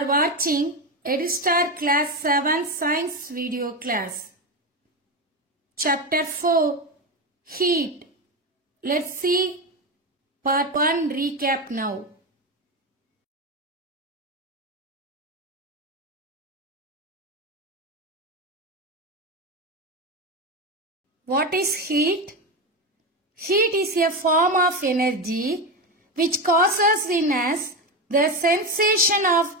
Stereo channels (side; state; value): both; normal; correlation 0.16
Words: watching EduStar Class 7 Science video class. Chapter 4 Heat. Let's see Part 1 recap now. What is heat? Heat is a form of energy which causes in us the sensation of